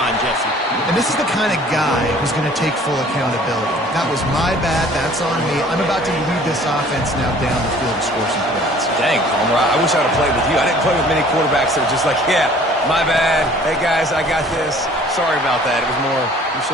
Jesse? And this is the kind of guy who's going to take full accountability. That was my bad. That's on me. I'm about to lead this offense now down the field to score some points. Dang, Palmer, I wish I would have played with you. I didn't play with many quarterbacks that were just like, yeah, my bad. Hey, guys, I got this. Sorry about that. It was more, you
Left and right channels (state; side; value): normal; both; correlation 0.52